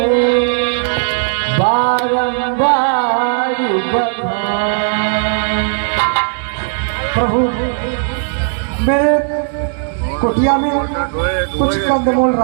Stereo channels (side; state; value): left; silent; digital silence